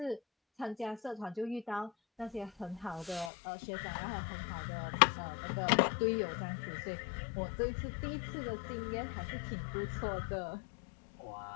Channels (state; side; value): drops out; right; at 3.3 s